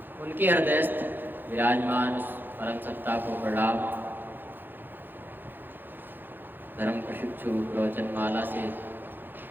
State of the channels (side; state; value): left; late; 0.093 ms